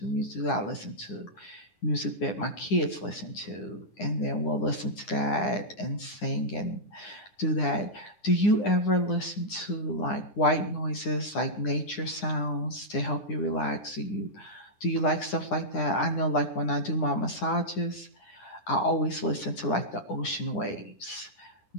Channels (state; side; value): late; right; 9.8 ms